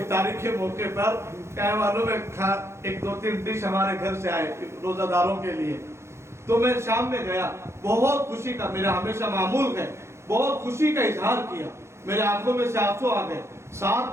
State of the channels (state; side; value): late; left; 0.13 ms